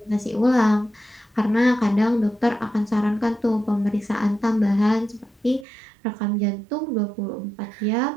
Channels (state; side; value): drops out; left; at 5.7 s